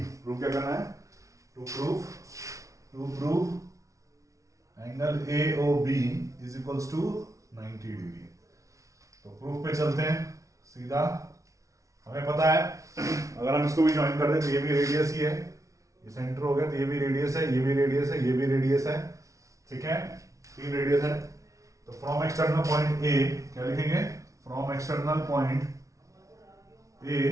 प्रूव क्या करना है? To prove angle AOB is equals to 90 degree. तो प्रूफ पे चलते हैं सीधा। हमें पता है अगर हम इसको भी ज्वाइन कर दें तो ये भी रेडियस ही है, ये सेंटर हो गया, तो ये भी रेडियस है, ये भी रेडियस है, ये भी रेडियस है, ठीक है, 3 रेडियस है। तो फ्रॉम एक्सटर्नल पॉइंट ए क्या लिखेंगे? फ्रॉम एक्सटर्नल पॉइंट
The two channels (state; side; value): late; left; 0.16 ms